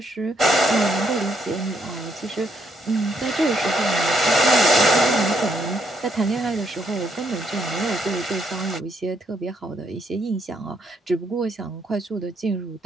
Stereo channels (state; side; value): normal; both; correlation 0.74